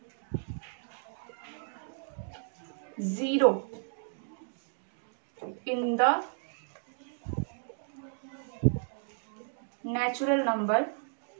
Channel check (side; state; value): left; silent; digital silence